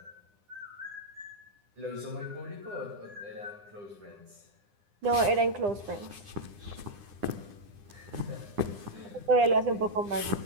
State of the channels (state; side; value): late; left; 9.9 ms